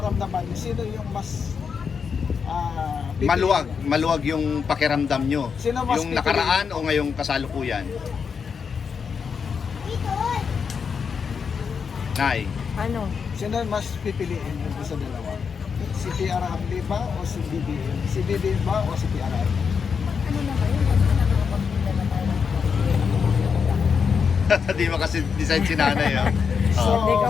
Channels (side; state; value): right; quieter; 6.1 dB